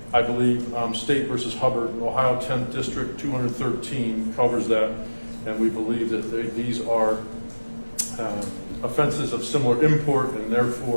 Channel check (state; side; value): inverted; both; correlation -1.00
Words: I believe State versus Hubbard, Ohio 10th District 213 covers that, and we believe that these are offenses of similar import and